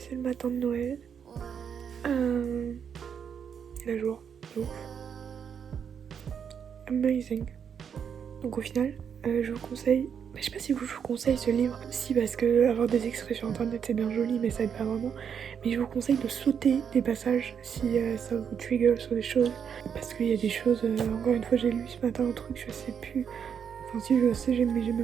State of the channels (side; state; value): left; quieter; 7.5 dB